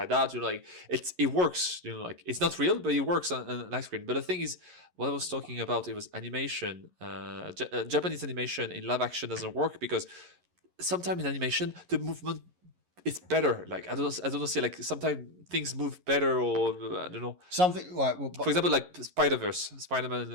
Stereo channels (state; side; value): late; left; 11 ms